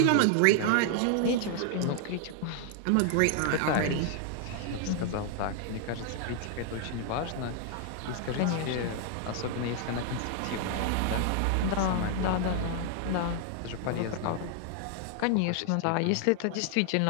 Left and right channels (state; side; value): different; both; correlation 0.00